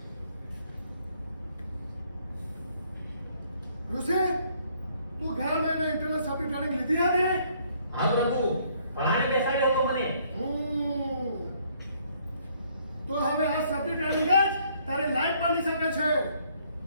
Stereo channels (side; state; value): both; inverted; correlation -0.65